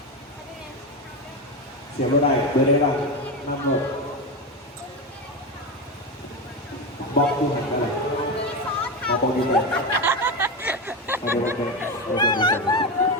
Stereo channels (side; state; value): both; normal; correlation 0.16